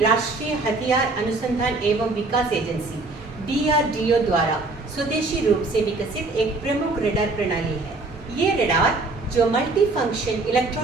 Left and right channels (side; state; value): left; quieter; 3.3 dB